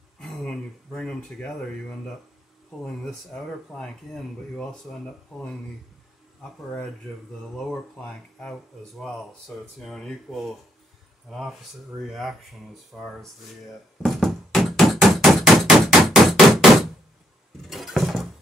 when you bring them together, you end up pulling this outer plank in, but you also end up pulling the upper edge of the lower plank out as well. So it's, you know, an opposite reaction as far as the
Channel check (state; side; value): normal; both; correlation 0.74